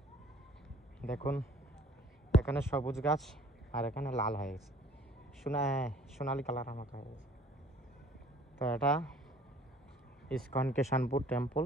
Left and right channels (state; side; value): normal; both; correlation 0.53